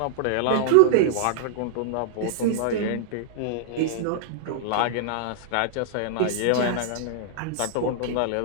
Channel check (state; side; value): different; both; correlation -0.01